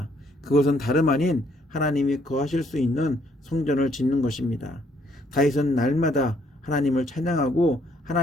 그것은 다름 아닌 하나님이 거하실 수 있는 성전을 짓는 것입니다. 다윗은 날마다 하나님을 찬양하고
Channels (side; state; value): both; normal; correlation 0.68